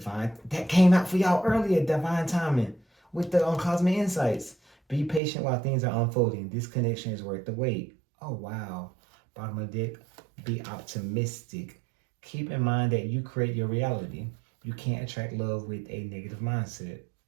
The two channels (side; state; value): left; drops out; at 5.2 s